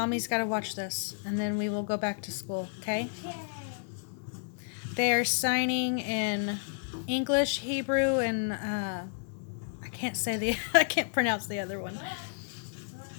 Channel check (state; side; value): silent; right; digital silence